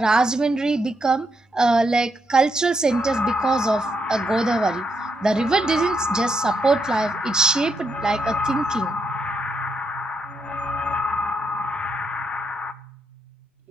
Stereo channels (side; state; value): both; normal; correlation 0.80